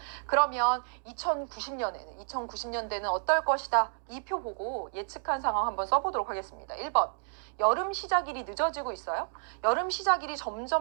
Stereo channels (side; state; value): left; silent; digital silence